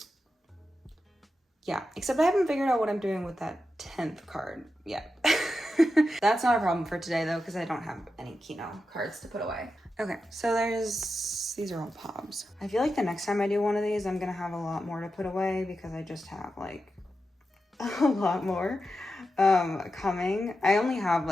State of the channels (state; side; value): normal; both; correlation 0.89